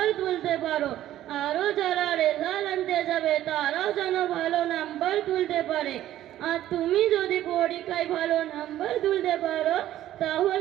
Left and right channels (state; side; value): quieter; left; 13.1 dB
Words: তুলতে পারো, আরও যারা রেজাল্ট আনতে যাবে তারাও যেন ভালো নাম্বার তুলতে পারে। আর তুমি যদি পরীক্ষায় ভালো নাম্বার তুলতে পারো